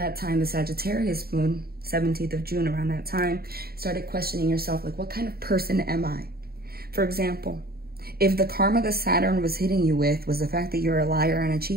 time, the Sagittarius moon, 17th of June, around that time, started questioning yourself, like, what kind of person am I? For example, if the karma that Saturn was hitting you with was the fact that you're a liar and a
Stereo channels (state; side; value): late; left; 0.45 ms